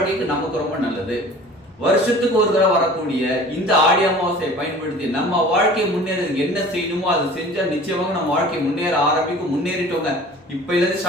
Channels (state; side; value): normal; both; correlation 0.44